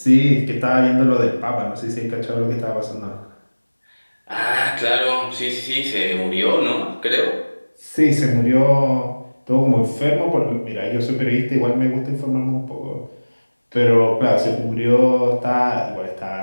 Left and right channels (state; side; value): inverted; both; correlation -1.00